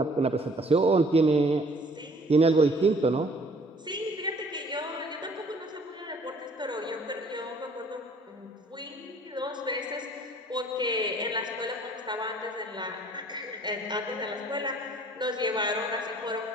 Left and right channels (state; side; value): normal; both; correlation 0.56